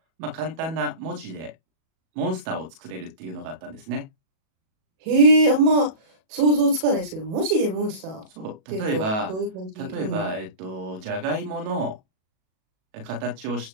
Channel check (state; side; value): late; left; 37 ms